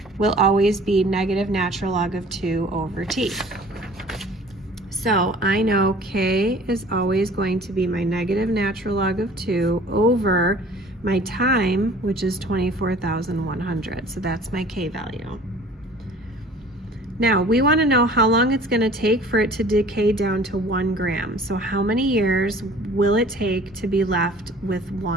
will always be negative natural log of 2 over T. So I know K is always going to be my negative natural log of 2 over my time, which is 24,100. So that's my K value. Now, we want to know how long it's going to take for it to decay down to 1 gram. So how many years will it take to be left with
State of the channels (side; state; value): both; normal; correlation 0.49